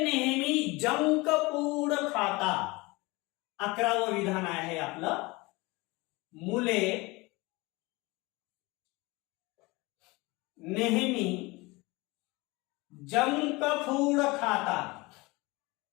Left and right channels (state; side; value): quieter; right; 23.7 dB